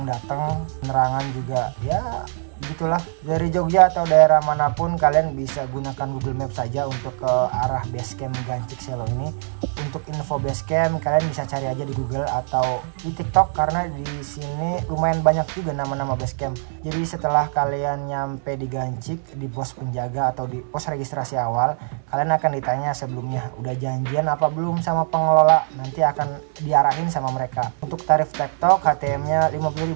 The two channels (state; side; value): silent; left; 57 dB below the other